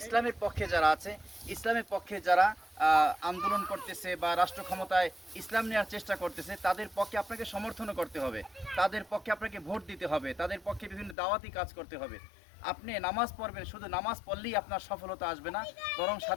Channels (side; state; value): right; drops out; at 11.2 s